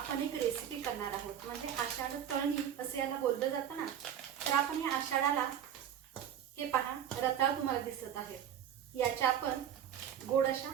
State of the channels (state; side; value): quieter; left; 9.5 dB